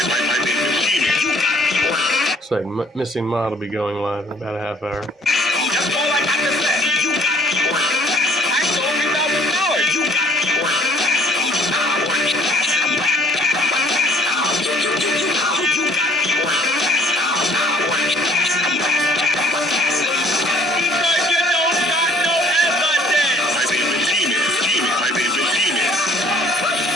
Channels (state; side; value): normal; both; correlation 0.58